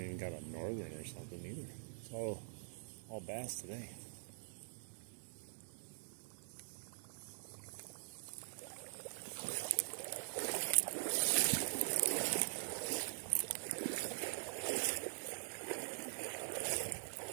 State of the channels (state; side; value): silent; left; digital silence